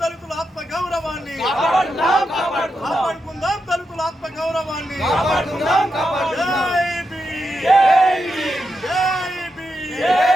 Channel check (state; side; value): normal; both; correlation 0.86